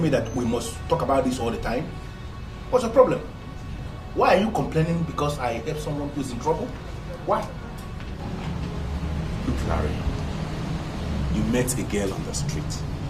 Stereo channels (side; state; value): both; identical; correlation 1.00